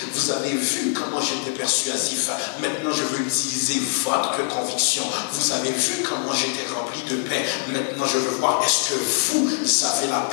Vous avez vu comment j'étais persuasif. Maintenant, je veux utiliser votre conviction. Vous avez vu comment j'étais rempli de paix. Maintenant, je veux voir, est-ce que vous avez la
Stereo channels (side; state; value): right; silent; 56 dB below the other